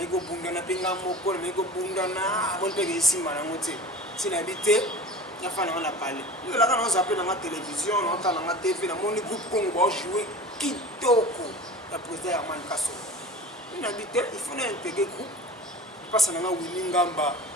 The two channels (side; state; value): both; normal; correlation 0.36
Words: bunda na pinga moko na mego bunda na bon pe isimba na ngote sina habité ya fana on a parlé yo la kana on s'appelle na télévision na kana na TV na moni groupe Congo ba jouer kitoko la président Herman Kasso ina habité il faut intégrer groupe passe na winning ngamba